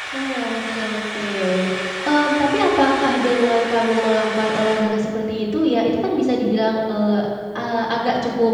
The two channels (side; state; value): both; identical; correlation 1.00